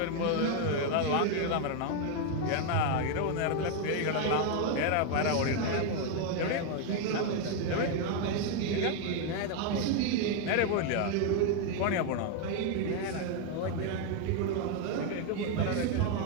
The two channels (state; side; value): different; both; correlation 0.01